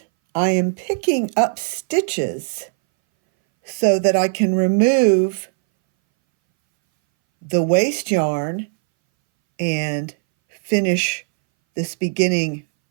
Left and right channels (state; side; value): silent; left; 63 dB below the other